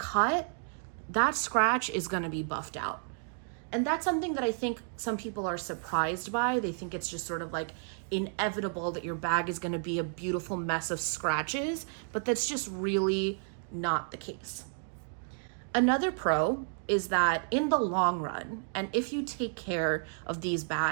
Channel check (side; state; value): left; silent; 57 dB below the other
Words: that scratch is going to be buffed out. And that's something that I think some people are surprised by. They think it's just sort of like inevitable that your bag is going to be a beautiful mess of scratches, but that's just really not the case. Another pro is that in the long run, and if you take care of these